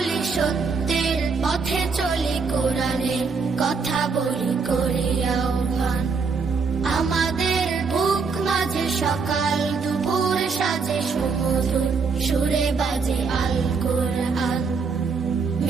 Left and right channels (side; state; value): left; quieter; 4.9 dB